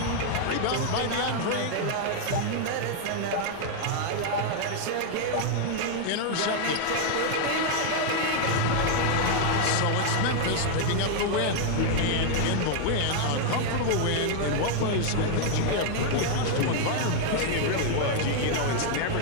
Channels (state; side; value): different; both; correlation 0.00